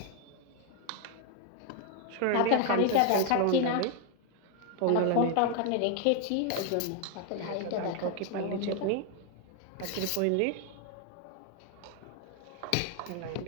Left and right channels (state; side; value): different; both; correlation 0.01